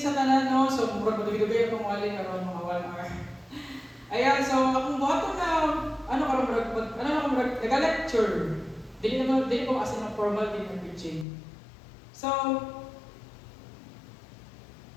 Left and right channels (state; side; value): drops out; right; at 11.2 s